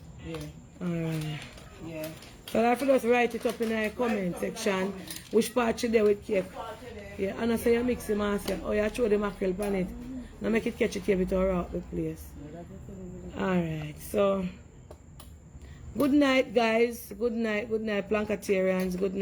yeah. Alright. Yeah. So I have to just write it up in the comment section. Which part you there with cake. Yeah, and I say you mix the Marcia. Oh, you throw the mackerel on it. Now make it catch it here with our out the place. Alright, so good night guys. Good night Plankatarians. Good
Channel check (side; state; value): both; identical; correlation 1.00